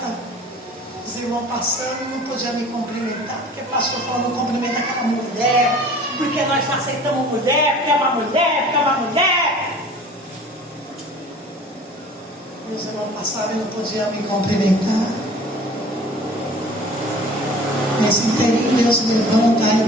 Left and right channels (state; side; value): normal; both; correlation 0.45